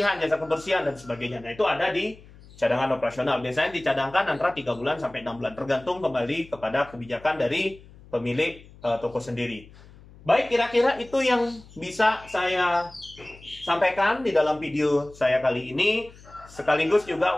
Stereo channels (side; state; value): left; noise; hum, 22 dB below the sound